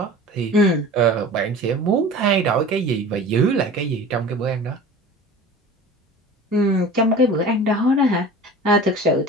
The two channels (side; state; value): both; normal; correlation 0.39